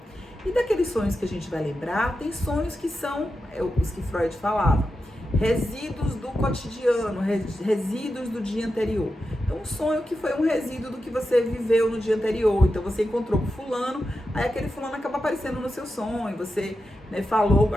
E daqueles sonhos que a gente vai lembrar, tem sonhos que são os que Freud falava, resíduos do cotidiano, resíduos do dia anterior. Então, um sonho que foi um resíduo do que você viveu no dia anterior. Então, você encontrou com fulano, aí aquele fulano acaba aparecendo no seu sonho. Você, né, falou,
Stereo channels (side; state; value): both; normal; correlation 0.89